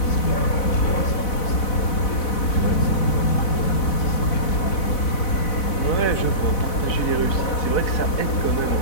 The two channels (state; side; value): late; right; 4.0 ms